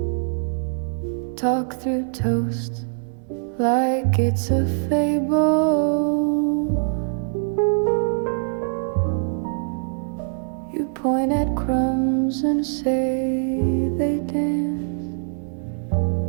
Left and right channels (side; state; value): left; silent; 63 dB below the other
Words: talk through toast like it's a fable. You point at crumbs and say they dance.